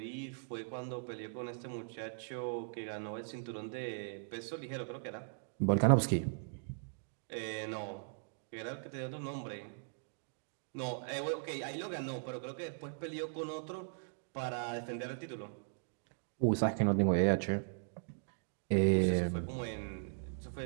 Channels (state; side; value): silent; left; digital silence